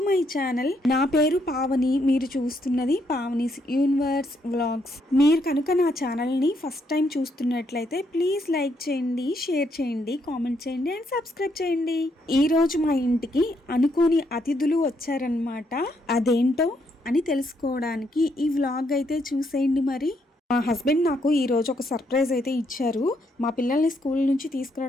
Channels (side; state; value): both; normal; correlation 0.75